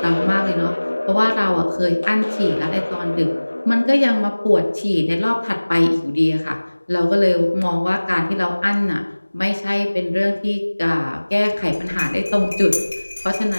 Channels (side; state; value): both; inverted; correlation -1.00